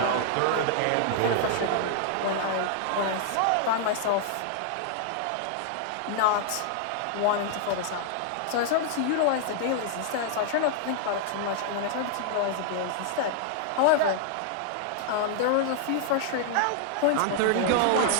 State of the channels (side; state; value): both; different; correlation -0.01